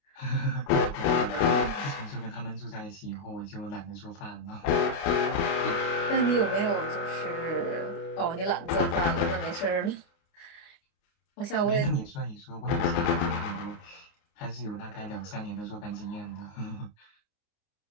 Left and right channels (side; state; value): right; late; 29 ms